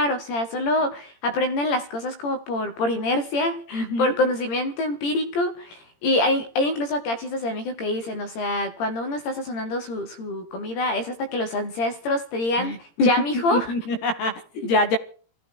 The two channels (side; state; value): right; late; 17 ms